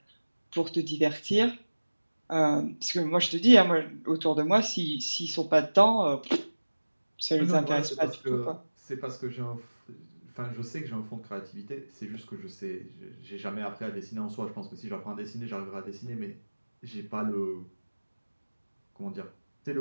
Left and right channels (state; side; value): inverted; both; correlation -1.00